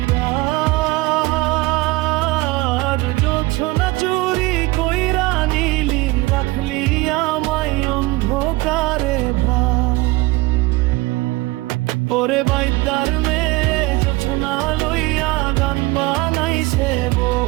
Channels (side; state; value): left; quieter; 21.5 dB